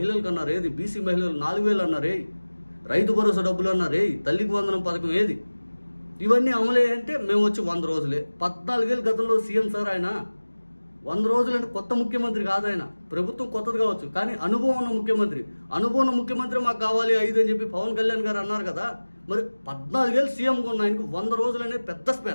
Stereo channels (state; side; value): inverted; both; correlation -1.00